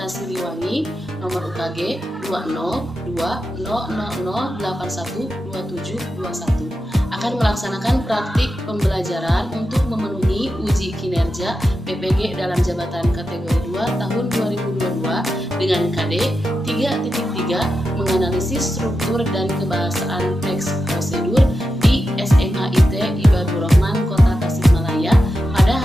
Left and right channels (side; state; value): both; normal; correlation 0.89